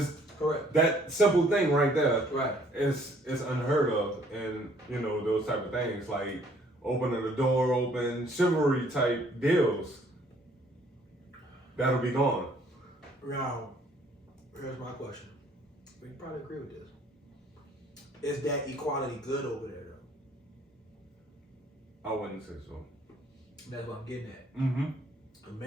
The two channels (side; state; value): both; normal; correlation 0.61